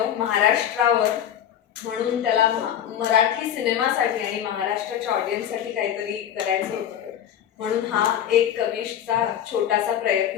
महाराष्ट्रावर. म्हणून त्याला मराठी सिनेमासाठी आणि महाराष्ट्राच्या ऑडियन्ससाठी काहीतरी करायचं होतं, म्हणून हा एक कविशचा छोटासा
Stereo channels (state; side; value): quieter; right; 10.1 dB